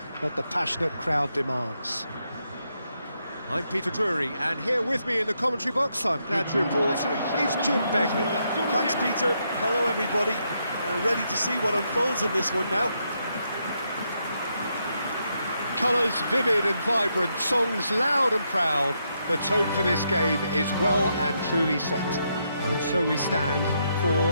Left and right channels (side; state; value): both; inverted; correlation -0.79